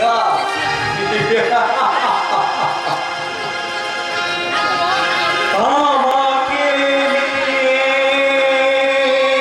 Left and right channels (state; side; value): identical; both; correlation 1.00